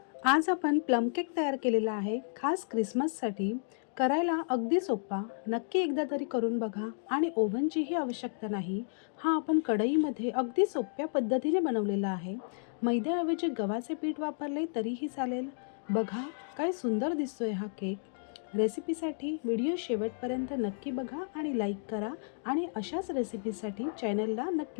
आज आपण plum cake तयार केलेला आहे खास क्रिसमससाठी. करायला अगदी सोपा, नक्की एकदा तरी करून बघा आणि ओव्हनचीही आवश्यकता नाही. हा आपण कढईमध्ये अगदी सोप्या पद्धतीने बनवलेला आहे. मैद्याऐवजी गव्हाचे पीठ वापरले तरीही चालेल. बघा काय सुंदर दिसतोय हा केक. रेसिपीसाठी व्हिडिओ शेवटपर्यंत नक्की बघा आणि लाईक करा आणि अशाच रेसिपीसाठी चॅनलला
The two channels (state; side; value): silent; right; digital silence